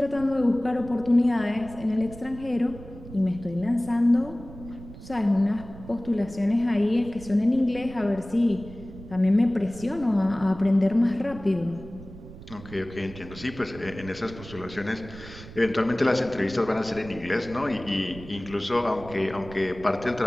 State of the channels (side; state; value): right; noise; rumble, 16 dB below the sound